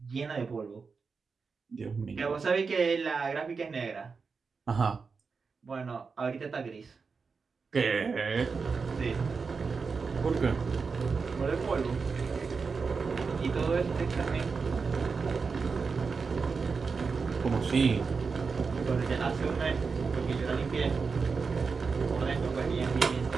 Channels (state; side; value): quieter; left; 5.0 dB